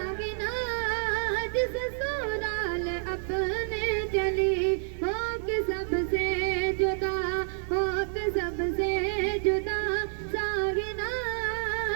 جس سورال اپنے چلی ہو کے سب سے جدا ہو کے سب سے جدا ساگنا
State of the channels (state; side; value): silent; left; digital silence